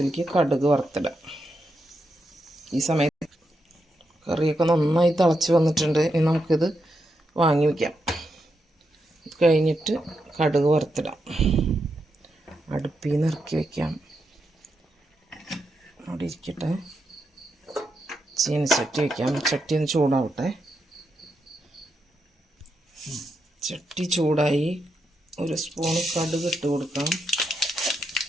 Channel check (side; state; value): both; normal; correlation 0.84